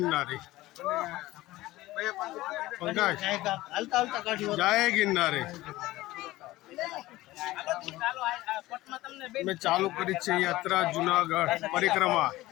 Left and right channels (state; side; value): quieter; right; 17.7 dB